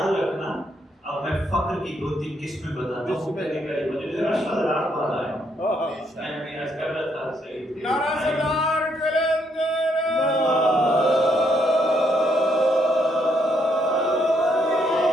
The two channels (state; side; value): normal; both; correlation 0.73